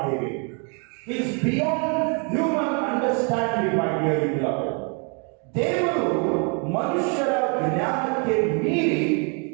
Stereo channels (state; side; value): quieter; left; 36.8 dB